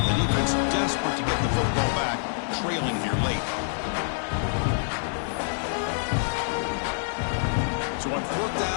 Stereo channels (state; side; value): silent; right; digital silence